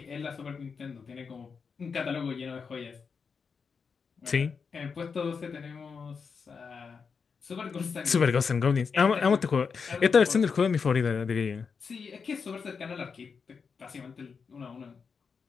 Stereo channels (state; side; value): quieter; right; 5.6 dB